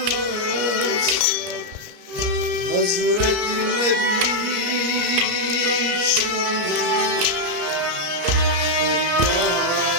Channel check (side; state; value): left; late; 33 ms